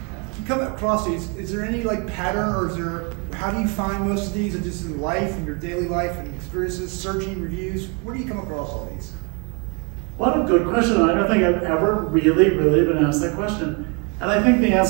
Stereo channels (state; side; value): quieter; left; 32.6 dB